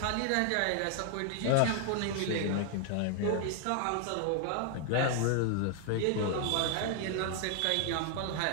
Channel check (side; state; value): both; different; correlation 0.00